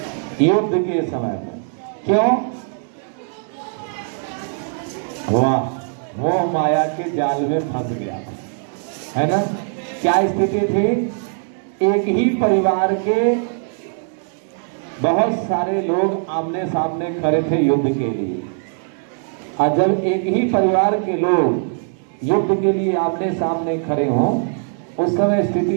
युद्ध के समय में। क्यों? वाह, मोह माया के जाल में फंस गया, है ना? क्या स्थिति थी? एक ही परिवार के बहुत सारे लोग आमने सामने खड़े थे युद्ध के लिए। और जब एक ही परिवार के लोग युद्ध के लिए आमने सामने खड़े हों, उस समय स्थिति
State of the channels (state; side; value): silent; left; digital silence